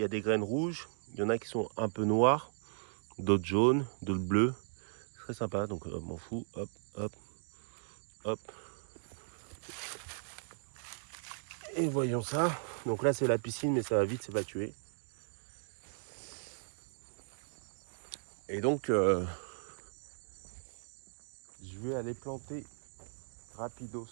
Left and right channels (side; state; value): left; silent; digital silence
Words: des graines rouges, il y en a qui sont un peu noires, d'autres jaunes, d'autres bleues. C'est très sympa, donc m'en fous. Hop, hop, hop. Et voyons ça. Donc là, c'est la piscine, mais ça va vite s'évacuer. Et donc, je vais aller planter rapidos.